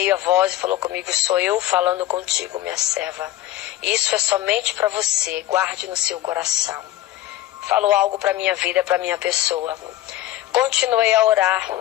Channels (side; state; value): right; quieter; 14.5 dB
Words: a voz e falou comigo, sou eu falando contigo, minha serva. Isso é somente para você, guarde no seu coração. Falou algo para minha vida, para minha pessoa. Continuei a orar